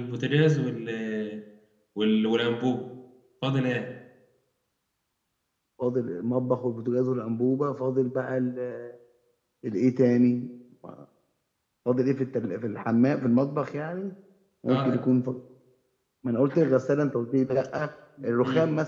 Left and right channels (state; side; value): identical; both; correlation 1.00